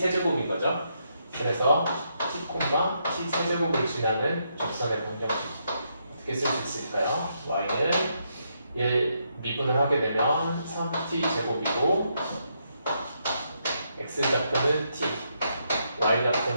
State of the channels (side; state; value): both; inverted; correlation -0.78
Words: 거죠. 그래서 t, t 세제곱을 지나는 접선의 방정식 어떻게 쓸 수 있을까요? y는 얘 미분을 하게 되면 3t 제곱이고 x 좌표는 t, y